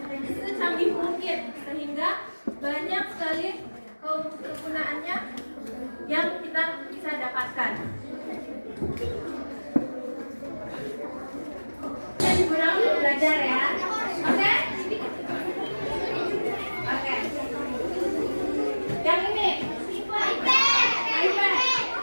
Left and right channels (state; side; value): inverted; both; correlation -1.00